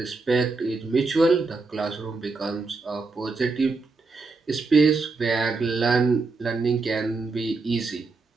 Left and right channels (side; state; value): left; quieter; 3.9 dB